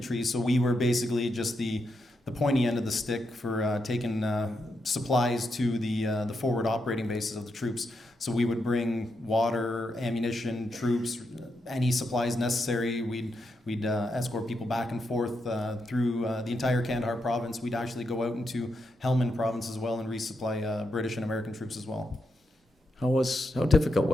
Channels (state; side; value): normal; both; correlation 0.83